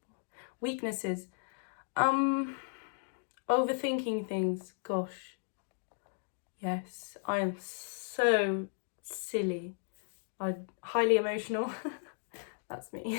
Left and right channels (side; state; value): right; silent; digital silence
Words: Weaknesses: overthinking things. Gosh, yes, I am so silly. I'm highly emotional. That's